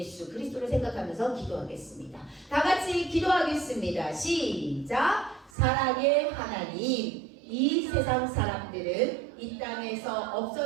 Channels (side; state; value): left; drops out; at 5.5 s